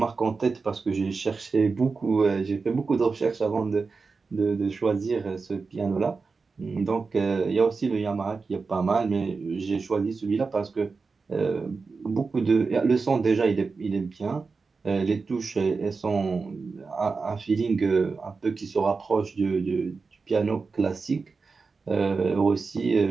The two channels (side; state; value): left; quieter; 4.5 dB